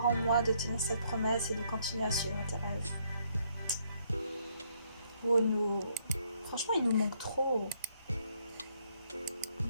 en moi, de tenir cette promesse et de continuer à suivre tes rêves. Oh nous... Franchement, il nous manque trop.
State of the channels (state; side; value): inverted; both; correlation -0.70